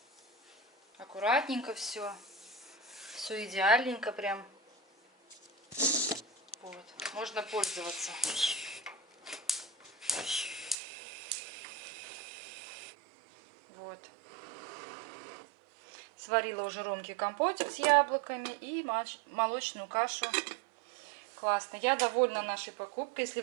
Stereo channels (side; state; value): left; drops out; at 10.8 s